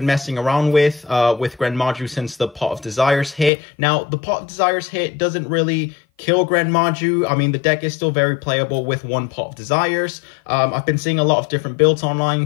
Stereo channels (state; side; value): drops out; right; at 3.5 s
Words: messing around with GREN MAJU since the Pot of Desires hit. Now, the Pot of Desires hit doesn't really kill GREN MAJU. I mean, the deck is still very playable with one Pot of Desires. I've been seeing a lot of different builds